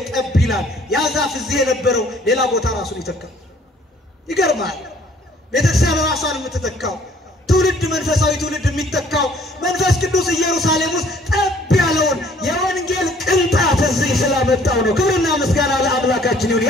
ጠብ ይላል። ያ ዛፍ እዚህ የነበረው ሌላ ቦታ ራሱን ይተካል። ይገርማል። ቤተክርስቲያን ራሷን የምትተካው ትውልድ መንፈሳዊ ትውልድ የሚተካው መንፈስ ቅዱስ ኢየሩሳሌም ውስጥ ጠብ ያለውን የወንጌል ቅንጣት እዚህ ስላመጣው ነው። ክብርና ምስጋና ለአምላካችን ይሁን።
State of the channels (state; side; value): normal; both; correlation 0.59